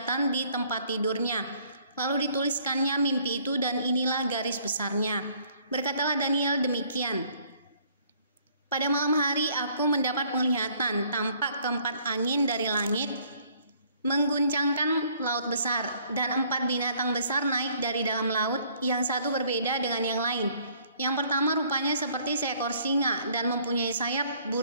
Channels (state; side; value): inverted; both; correlation -0.62